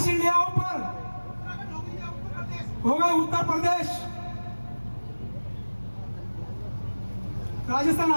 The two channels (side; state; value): both; inverted; correlation -1.00